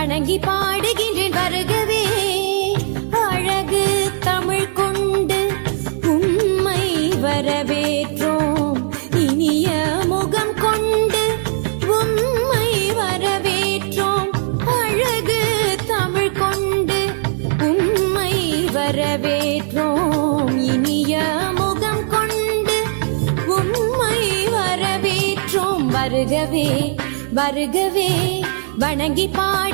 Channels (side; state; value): left; silent; digital silence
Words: பாடுகின்றேன் வருகவே. அழகு தமிழ் கொண்டு உம்மை வரவேற்றோம், இனிய முகம் கொண்டு உம்மை வரவேற்றோம். அழகு தமிழ் கொண்டு உம்மை வரவேற்றோம், இனிய முகம் கொண்டு உம்மை வரவேற்றோம். வருகவே வருகவே வணங்கி